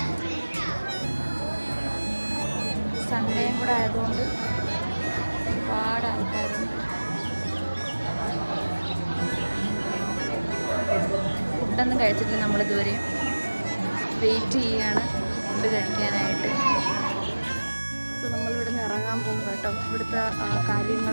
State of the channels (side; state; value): both; inverted; correlation -1.00